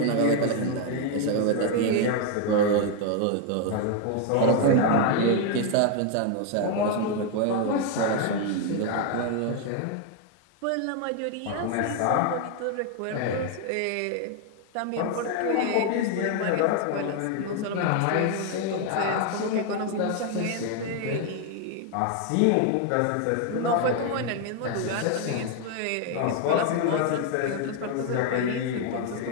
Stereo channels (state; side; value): different; both; correlation 0.00